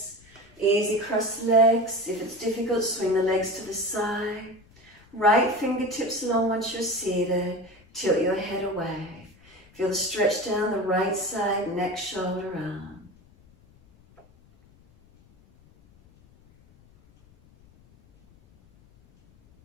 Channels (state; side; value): noise; left; rumble, 28 dB below the sound